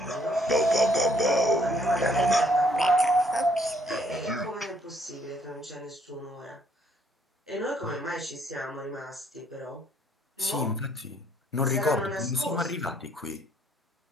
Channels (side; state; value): both; normal; correlation 0.66